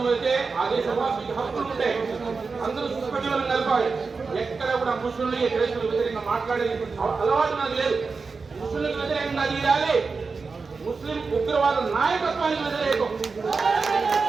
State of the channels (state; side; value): quieter; left; 4.6 dB